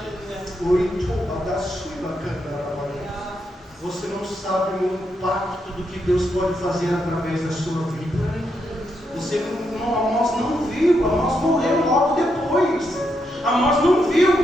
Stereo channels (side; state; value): both; normal; correlation 0.81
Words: Você não sabe o impacto do que Deus pode fazer através da sua vida. Amós não viu, Amós morreu logo depois. Amós não viu